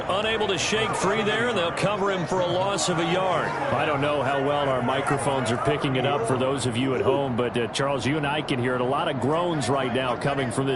unable to shake free there, and they'll cover him for a loss of a yard. I don't know how well our microphones are picking it up for those of you at home, but Charles, you and I can hear it. A lot of groans right now coming from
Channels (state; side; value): identical; both; correlation 1.00